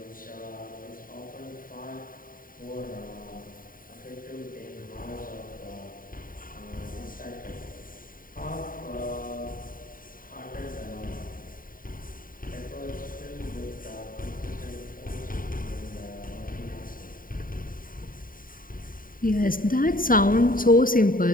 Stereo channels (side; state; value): right; late; 0.41 ms